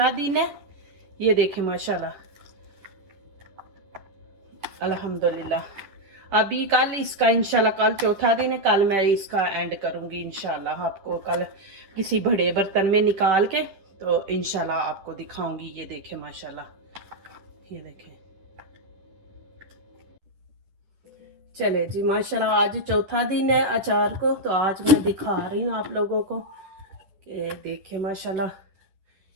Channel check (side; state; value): left; late; 10 ms